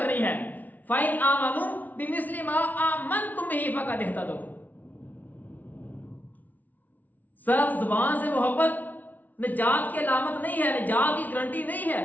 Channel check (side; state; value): right; late; 0.079 ms